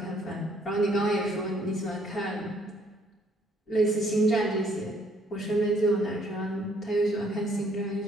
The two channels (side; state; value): both; normal; correlation 0.64